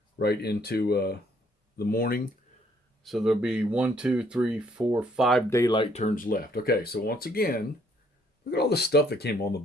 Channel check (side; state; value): both; normal; correlation 0.66